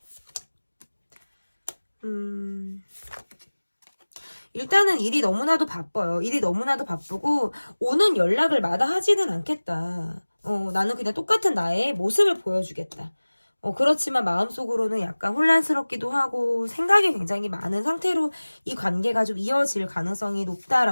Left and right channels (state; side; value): inverted; both; correlation -1.00